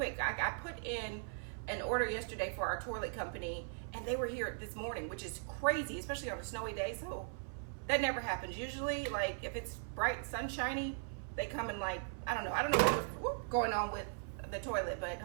I put in an order yesterday for our toilet company, and they were here this morning, which is crazy, especially on a snowy day. So that never happens. Usually, like if it's bright, sunshiny, they come and like, I don't know what's going on with the toilet, but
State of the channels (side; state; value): left; silent; 52 dB below the other